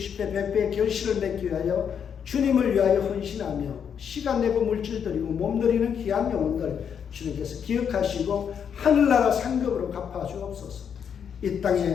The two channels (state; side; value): quieter; right; 7.7 dB